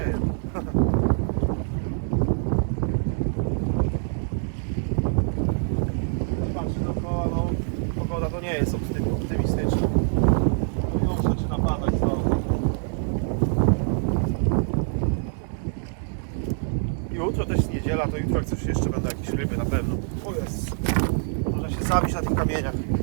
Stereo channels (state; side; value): silent; left; 59 dB below the other